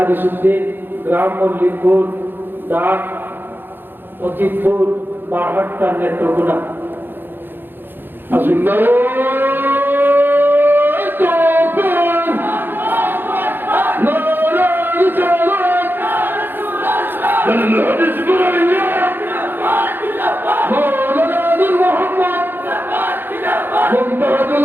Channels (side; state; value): left; late; 0.097 ms